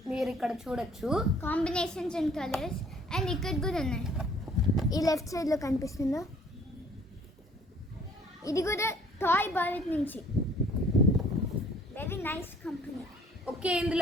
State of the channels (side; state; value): both; normal; correlation 0.56